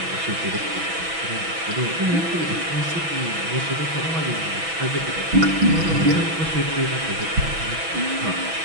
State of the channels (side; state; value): left; late; 6.1 ms